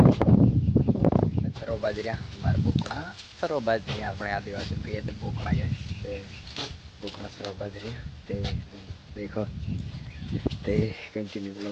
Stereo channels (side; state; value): both; identical; correlation 1.00